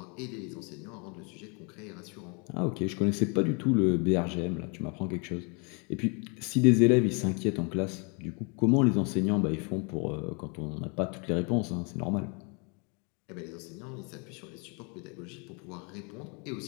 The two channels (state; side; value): quieter; right; 34.3 dB